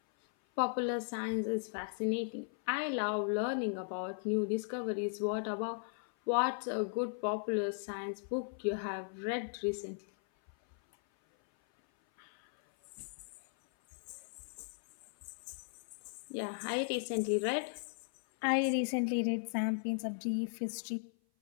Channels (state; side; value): silent; right; 53 dB below the other